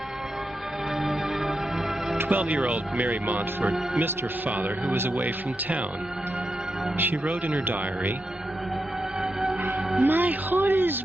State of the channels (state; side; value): normal; both; correlation 0.87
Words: 12-year-old Mary Montfort missed her father, who was away from town. She wrote in her diary, "My heart is